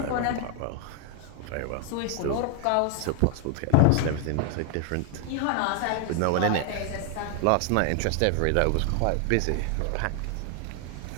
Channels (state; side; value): different; both; correlation 0.00